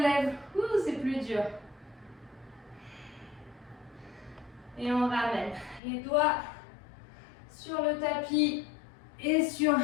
Ouh, c'est plus dur. Et on ramène les doigts sur le tapis et sur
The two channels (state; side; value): drops out; right; at 5.8 s